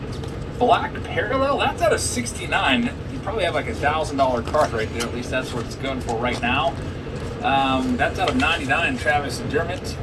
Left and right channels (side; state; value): both; identical; correlation 1.00